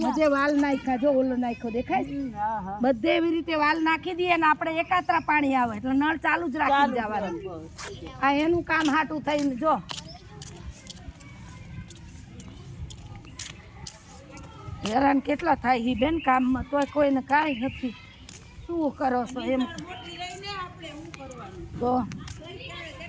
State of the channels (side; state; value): both; identical; correlation 1.00